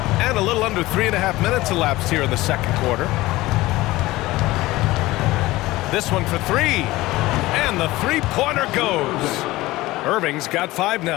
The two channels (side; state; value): right; quieter; 18.6 dB